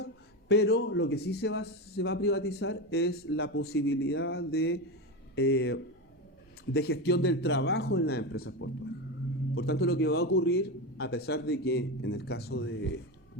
pero lo que sí se va a privatizar es la posibilidad de gestión del trabajo en las empresas portuarias. Por tanto, lo que va a ocurrir, a pesar de que en el caso de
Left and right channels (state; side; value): normal; both; correlation 0.17